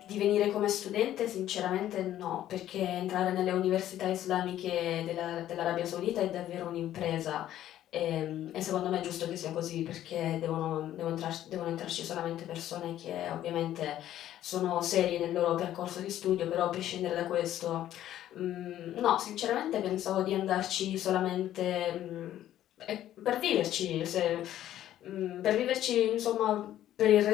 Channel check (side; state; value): right; quieter; 12.4 dB